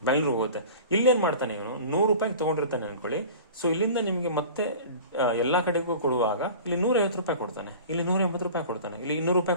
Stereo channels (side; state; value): both; inverted; correlation -0.40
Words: ಬೆಂಗಳೂರಿಗೆ ಹೋಗುತ್ತೆ. ಇಲ್ಲೇನು ಮಾಡ್ತಾನೆ ಇವನು, 100 ರೂಪಾಯಿಗೆ ತೊಗೊಂಡಿರ್ತಾನೆ ಅನ್ಕೊಳ್ಳಿ. ಸೊ ಇಲ್ಲಿಂದ ನಿಮಗೆ ಮತ್ತೆ ಎಲ್ಲ ಕಡೆಗೂ ಕೊಡುವಾಗ ಇಲ್ಲಿ 150 ರೂಪಾಯಿ ಕೊಡ್ತಾನೆ, ಇಲ್ಲಿ 180 ರೂಪಾಯಿ ಕೊಡ್ತಾನೆ, ಇಲ್ಲಿ 200